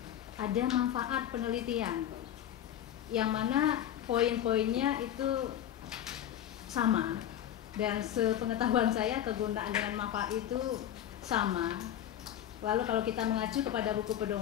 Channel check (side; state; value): right; quieter; 11.0 dB